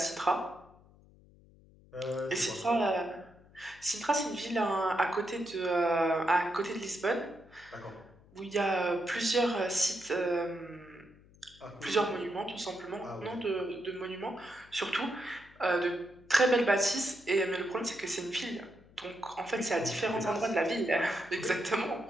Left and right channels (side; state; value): left; noise; hum, 26 dB below the sound